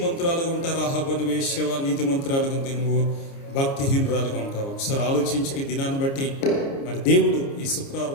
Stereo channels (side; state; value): right; late; 29 ms